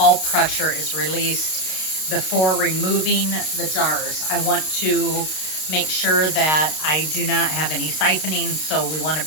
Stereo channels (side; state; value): right; late; 32 ms